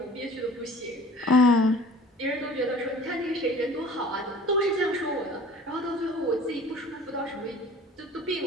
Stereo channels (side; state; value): both; normal; correlation 0.46